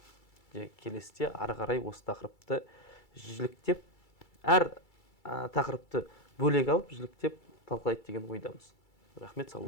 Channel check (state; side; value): late; right; 2.3 ms